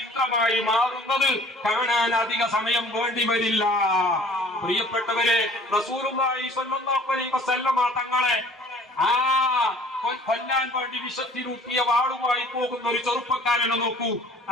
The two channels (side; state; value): both; normal; correlation 0.51